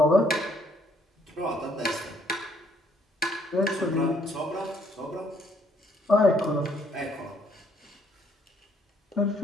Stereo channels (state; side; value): normal; both; correlation 0.66